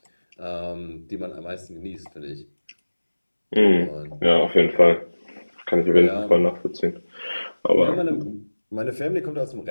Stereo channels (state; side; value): inverted; both; correlation -1.00